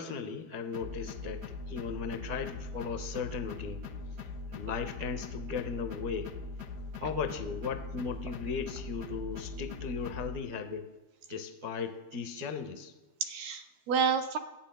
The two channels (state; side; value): late; left; 12 ms